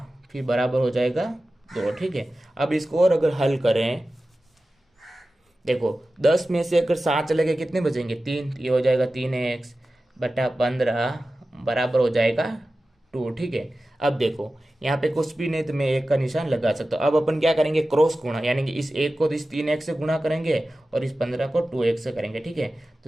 फिर बराबर हो जाएगा 2। ठीक है, अब इसको और अगर हल करें, देखो 10 में से अगर 7 चले गए कितने बचेंगे 3, ये हो जाएगा 3x बटा 15 बराबर हो जाएगा 2। ठीक है, अब देखो यहाँ पे कुछ भी नहीं तो मैं 1 का निशान लगा सकता हूँ। अब अपन क्या करेंगे, क्रॉस गुणा, यानी कि इस 1 को तो इस 3x से गुणा करेंगे और इस 15 को 2x से करेंगे। ठीक है,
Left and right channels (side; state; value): both; normal; correlation 0.95